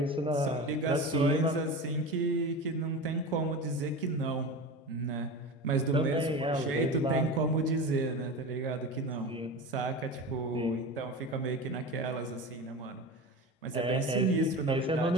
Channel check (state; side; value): normal; both; correlation 0.28